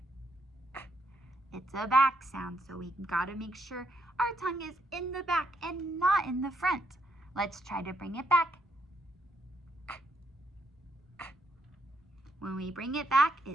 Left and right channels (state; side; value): normal; both; correlation 0.75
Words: It's a back sound, so we gotta make sure our tongue is in the back and not in the front. Let's try to bring it back. When we bring it back,